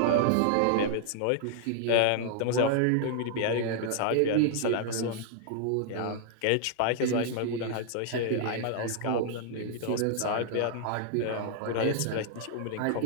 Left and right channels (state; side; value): different; both; correlation -0.01